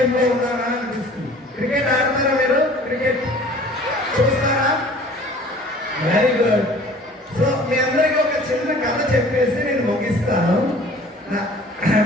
ఉన్నారా అనిపిస్తుంది. క్రికెట్ ఆడతారా మీరు? క్రికెట్ చూస్తారా? Very good. సో మీ అందరికీ ఒక చిన్న కథ చెప్పేసి నేను ముగిస్తాను.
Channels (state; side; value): normal; both; correlation 0.48